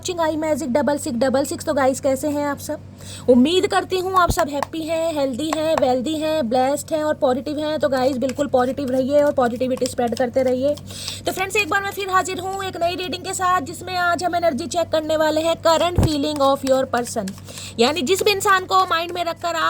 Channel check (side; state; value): both; identical; correlation 1.00